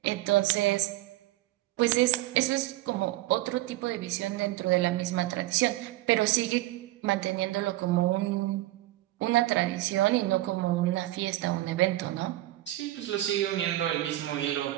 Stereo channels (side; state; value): left; quieter; 16.7 dB